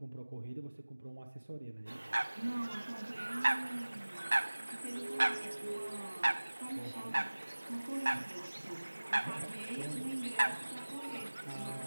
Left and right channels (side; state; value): both; inverted; correlation -1.00